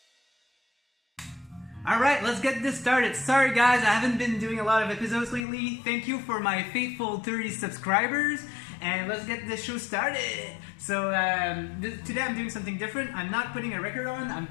Alright, let's get this started. Sorry guys, I haven't been doing a lot of episodes lately. Thank you for my faithful 30 subscribers, and let's get this show started. So today I'm doing something different. I'm not putting a record on, I'm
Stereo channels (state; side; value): drops out; right; at 5.4 s